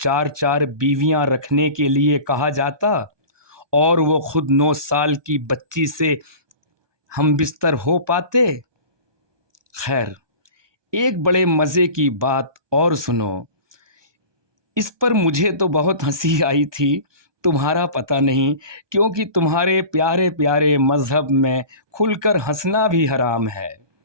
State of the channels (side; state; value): left; late; 1.2 ms